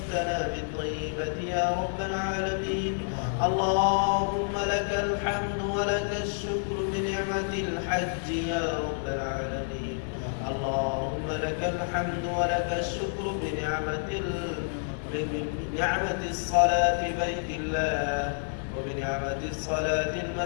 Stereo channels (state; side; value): silent; right; digital silence